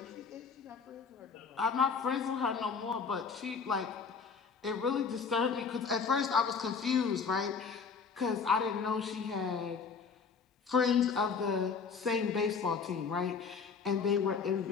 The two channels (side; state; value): right; quieter; 5.6 dB